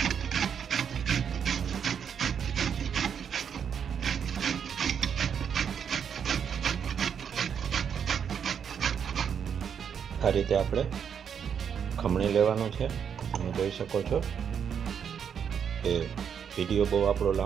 આ રીતે આપણે ખમણી લેવાનું છે. તમે જોઈ શકો છો કે વિડીયો બહુ આપણો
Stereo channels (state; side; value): quieter; left; 7.6 dB